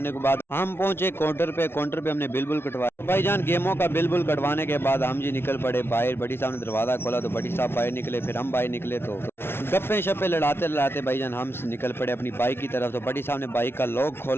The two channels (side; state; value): right; late; 0.12 ms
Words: के बाद हम पहुंचे काउंटर पे हमने बिल कटवाया। भाई जान गेमों का बिल कटवाने के बाद हम जी निकल पड़े बाहर। बड़ी साहब ने दरवाजा खोला तो बड़ी साहब बाहर निकले, फिर हम बाहर निकले। तो गप्पे शप्पे लड़ाते भाईजान हम निकल पड़े अपनी बाइक की तरफ। तो बड़ी साहब ने बाइक का लॉक